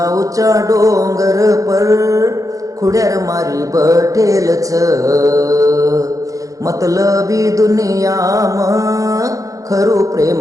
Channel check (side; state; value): left; late; 0.16 ms